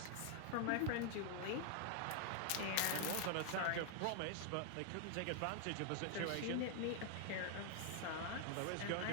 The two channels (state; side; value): different; both; correlation 0.00